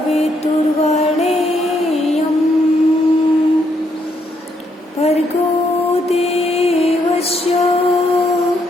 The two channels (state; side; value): normal; both; correlation 0.74